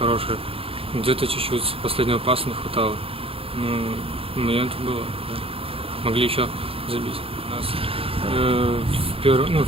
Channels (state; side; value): late; left; 0.27 ms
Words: Где-то чуть-чуть последнего паса не хватало. Ну, момент было, да. Могли еще забить. У нас,